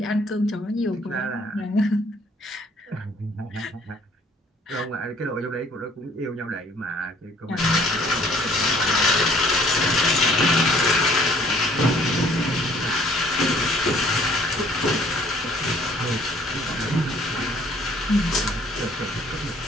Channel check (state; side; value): normal; both; correlation 0.58